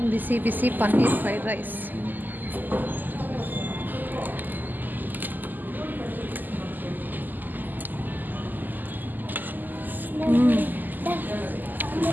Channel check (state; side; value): late; left; 0.086 ms